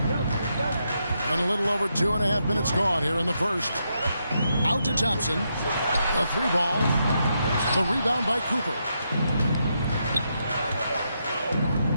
And a little over 2.5 minutes gone here in the first. Out to Thompson. A 3 ball. The rebound by Cooper.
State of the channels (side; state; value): both; inverted; correlation -0.81